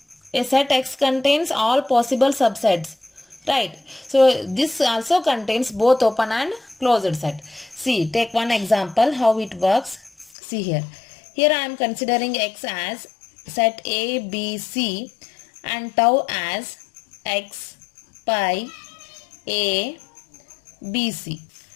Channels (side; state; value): right; drops out; at 10.3 s